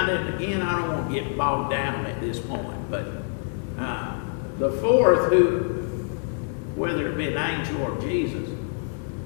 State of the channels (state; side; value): silent; right; digital silence